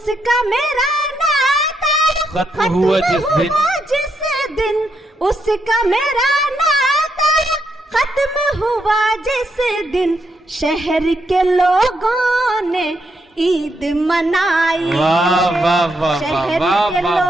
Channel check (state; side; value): normal; both; correlation 0.80